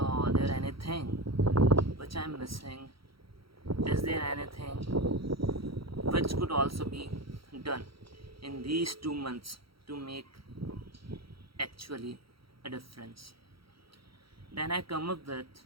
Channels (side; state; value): left; late; 0.75 ms